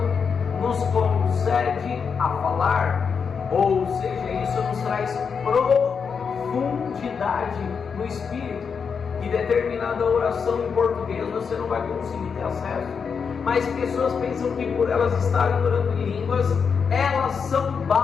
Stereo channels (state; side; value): quieter; right; 6.1 dB